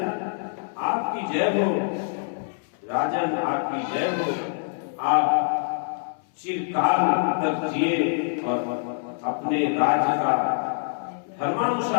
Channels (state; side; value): silent; right; 62 dB below the other